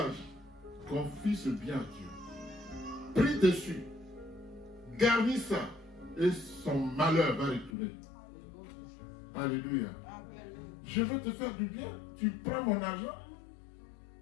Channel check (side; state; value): right; drops out; at 7.7 s